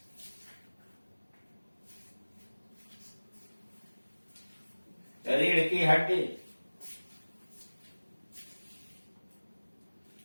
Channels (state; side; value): inverted; both; correlation -1.00